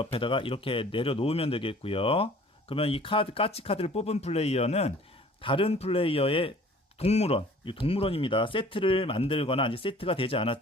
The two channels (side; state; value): both; normal; correlation 0.51